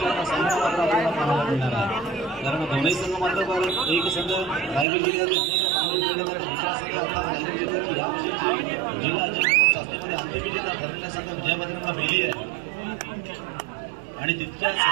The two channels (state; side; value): drops out; left; at 4.9 s